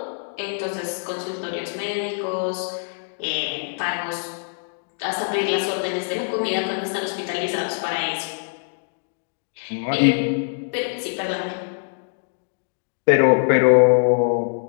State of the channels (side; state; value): right; silent; digital silence